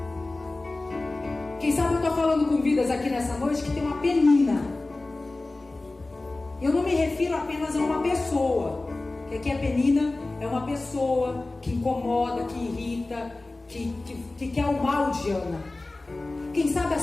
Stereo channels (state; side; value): quieter; right; 3.1 dB